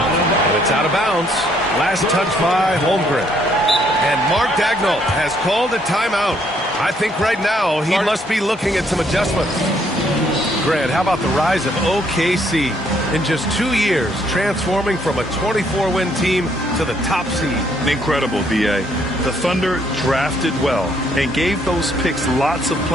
it's out of bounds. Last touch by Holmgren. And Mark Dagnall has called a timeout. I think right now he must be looking at some adjustments. Grant, how about the rise of OKC in just 2 years, transforming from a 24-win team to the top seed? Incredible, B.A. The Thunder drafted well and gave those picks lots of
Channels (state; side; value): normal; both; correlation 0.68